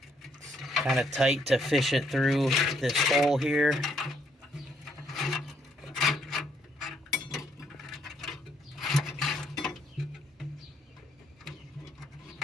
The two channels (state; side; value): normal; both; correlation 0.71